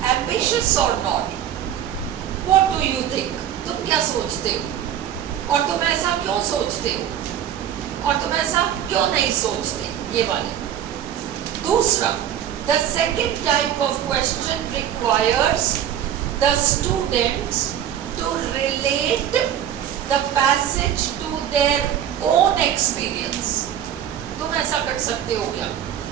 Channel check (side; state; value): left; quieter; 10.3 dB